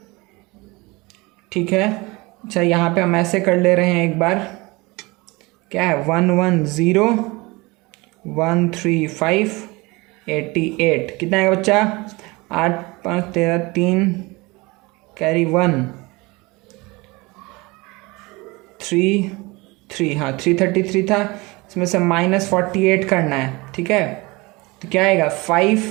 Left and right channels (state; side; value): quieter; left; 24.1 dB